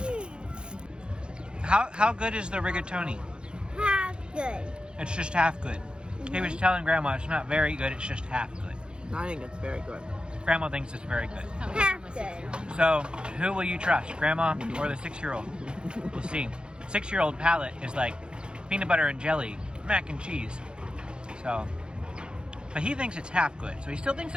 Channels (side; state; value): left; late; 0.051 ms